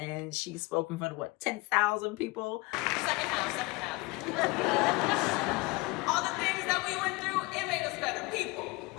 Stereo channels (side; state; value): right; quieter; 24.9 dB